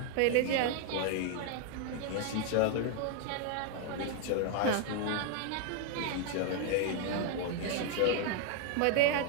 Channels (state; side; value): different; both; correlation 0.00